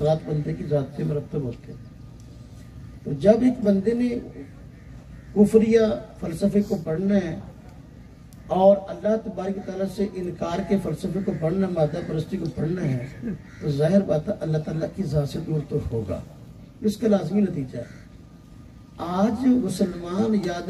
बंदे की ज़ात से मरतब होते हैं। तो जब एक बंदे ने कुफरिया फ़लसफ़े को पढ़ना है और अल्लाह तबारक व तआला से इनकार के फ़लसफ़े को पढ़ना, मादा परस्ती को पढ़ना है, तो ज़ाहिर बात है अल्लाह ताला की ज़ात से दूर तो होगा। इसका लाज़मी नतीजा है। आज मुसलमान याद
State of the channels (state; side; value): identical; both; correlation 1.00